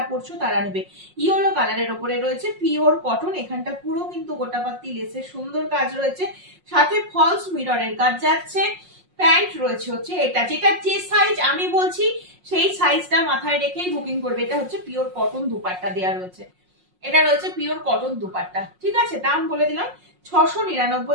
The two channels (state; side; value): late; left; 5.5 ms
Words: পড়ছো তারা নেবে। ইয়েলো কালারের উপরে রয়েছে পিওর কটন, এখানটা পুরো কিন্তু গোটাপাতি লেসের সুন্দর কাজ রয়েছে, সাথে ফলস মিররের কাজ যাচ্ছে। প্যান্ট রয়েছে হচ্ছে এটা, যেটা যে সাইজ আমি বলছি সেই সাইজটা মাথায় রেখেই বুকিং করবে। এটা হচ্ছে পিওর কটন দুপাট্টা দেওয়া রয়েছে, এটা রয়েছে পিওর কটন দুপাট্টা, ঠিক আছে। দাম বলে দিলাম